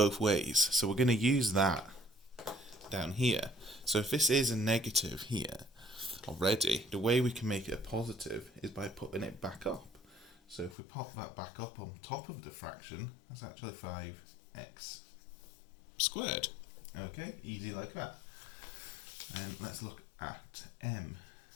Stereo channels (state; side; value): drops out; right; at 10.8 s